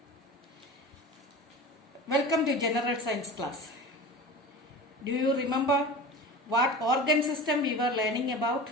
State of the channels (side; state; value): both; normal; correlation 0.33